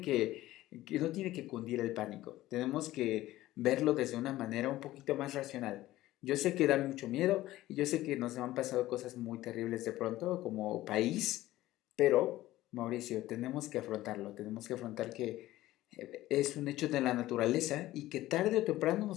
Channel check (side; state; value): right; quieter; 16.0 dB